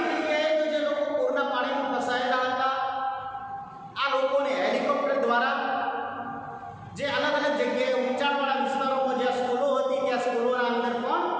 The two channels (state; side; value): identical; both; correlation 1.00